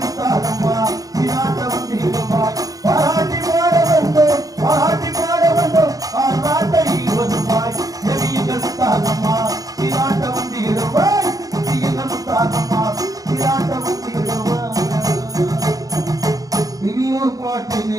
முத்தாரம்மா சிராட்ட வந்திடுவாய் பாராட்டி பாட வந்தோம் பாராட்டி பாட வந்தோம் பாராட்டை வருவாய் தேவியங்கள் முத்தாரம்மா சிராட்ட வந்திடுவாய் தேவியங்கள் முத்தாரம்மா சிராட்ட வந்திடுவாய் இனியொரு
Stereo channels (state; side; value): late; left; 0.17 ms